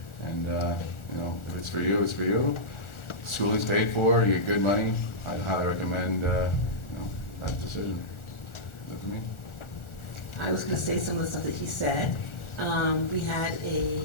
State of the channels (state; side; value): late; right; 1.4 ms